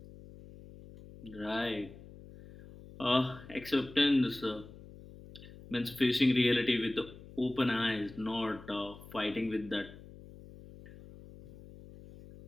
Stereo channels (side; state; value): left; noise; hum, 18 dB below the sound